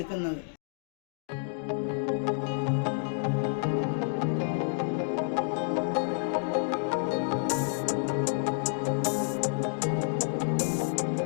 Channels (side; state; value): right; silent; digital silence